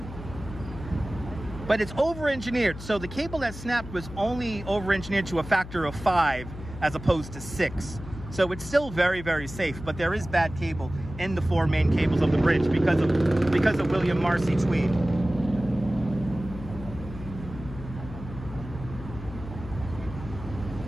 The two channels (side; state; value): left; noise; hum, 12 dB below the sound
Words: But it's over-engineered. So the cable that snapped was only over-engineered to a factor of 5 as opposed to 6. So it's still very, very safe, but there is bad cable in the 4 main cables of the bridge because of William Marcy Tweed.